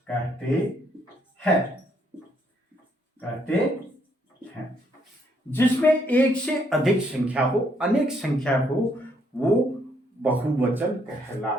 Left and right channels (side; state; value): both; normal; correlation 0.71